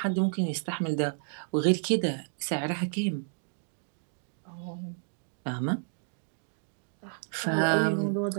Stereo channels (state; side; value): silent; left; digital silence